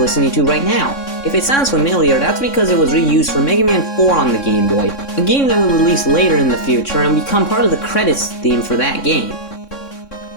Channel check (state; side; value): late; right; 3.6 ms